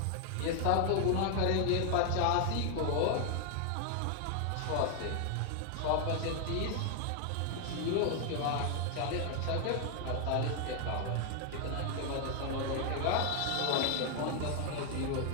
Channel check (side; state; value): both; different; correlation 0.00